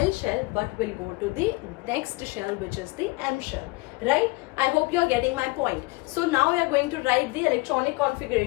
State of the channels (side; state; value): right; quieter; 23.5 dB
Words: shell but will go to the next shell, which is the M shell, right? I hope you are getting my point. So now we are going to write the electronic